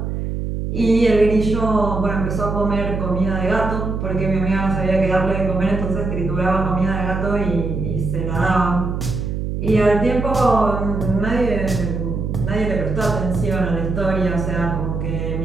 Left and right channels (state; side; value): noise; right; hum, 3 dB below the sound